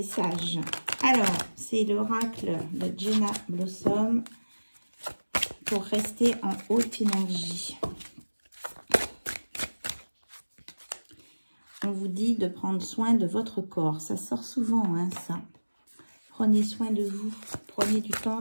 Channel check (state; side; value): inverted; both; correlation -1.00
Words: Alors, c'est l'oracle de Jenna Blossom pour rester en haute énergie. On vous dit de prendre soin de votre corps. Ça sort souvent, hein, ça. Prenez soin de vous. Prenez du temps